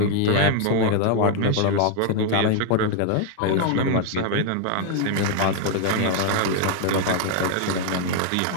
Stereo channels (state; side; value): different; both; correlation 0.00